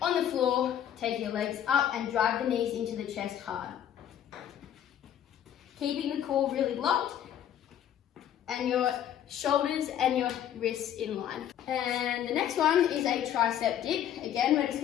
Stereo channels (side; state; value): right; quieter; 10.3 dB